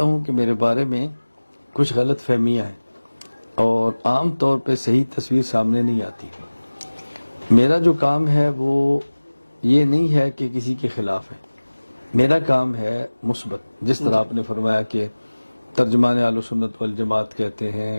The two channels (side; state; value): both; inverted; correlation -1.00